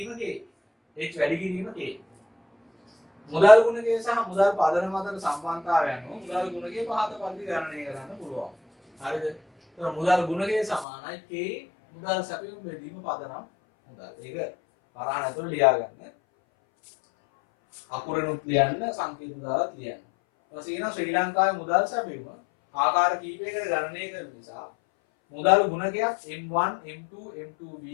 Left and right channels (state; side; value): drops out; right; at 10.9 s